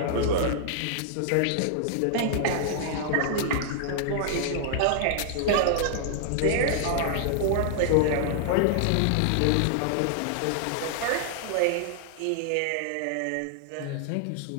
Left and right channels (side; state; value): both; different; correlation -0.01